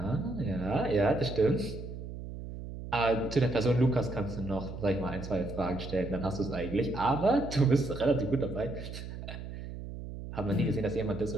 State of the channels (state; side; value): noise; right; hum, 9 dB below the sound